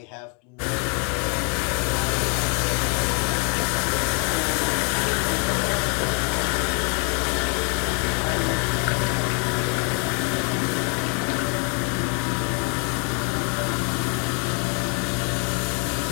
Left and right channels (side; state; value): right; quieter; 37.3 dB